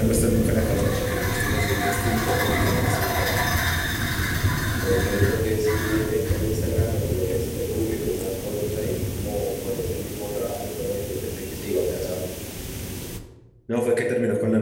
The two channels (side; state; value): both; identical; correlation 1.00